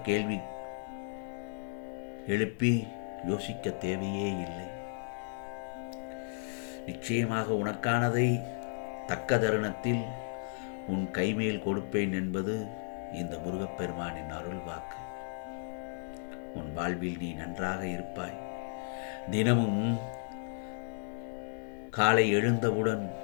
கேள்வி எழுப்பி யோசிக்க தேவையே இல்லை. நிச்சயமாக உனக்கானதை தக்க தருணத்தில் உன் கைமேல் கொடுப்பேன் என்பது இந்த முருகப்பெருமானின் அருள் வாக்கு. உன் வாழ்வில் நீ நன்றாக இருப்பாய். தினமும் காலை எழுந்தவுடன்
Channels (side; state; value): right; silent; digital silence